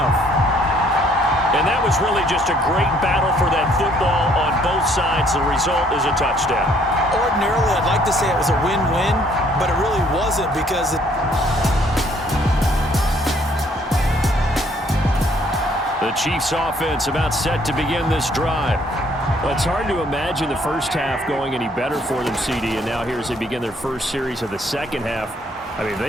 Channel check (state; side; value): normal; both; correlation 0.63